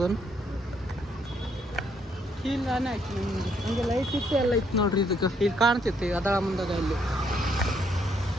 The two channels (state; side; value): normal; both; correlation 0.71